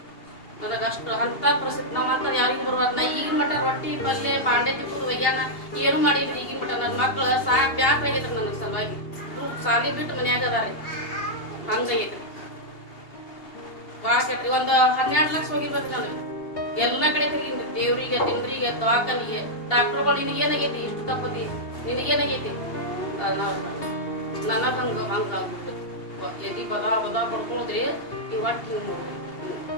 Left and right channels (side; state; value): right; late; 2.8 ms